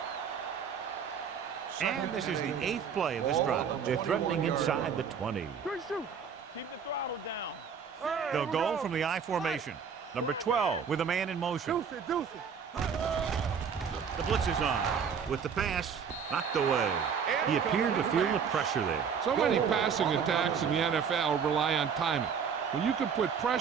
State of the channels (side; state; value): left; quieter; 6.8 dB